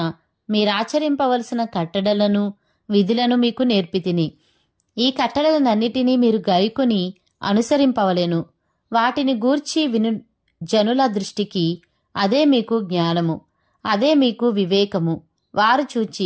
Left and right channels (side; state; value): both; identical; correlation 1.00